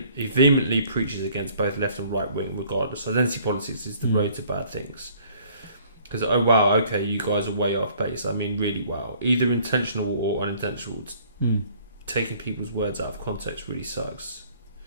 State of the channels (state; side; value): inverted; both; correlation -0.58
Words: preaches against both left and right wing, regardless. Identity politics is the road to bad things. Because, oh wow, okay, you guys are way off base. I mean, really, wow. Either intentional or unintentional. Taking people's words out of context really sucks.